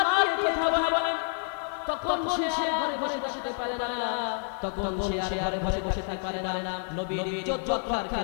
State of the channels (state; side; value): silent; right; 59 dB below the other